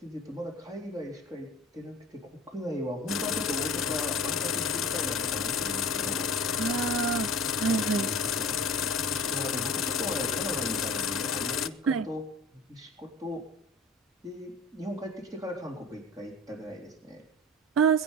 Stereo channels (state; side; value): normal; both; correlation 0.38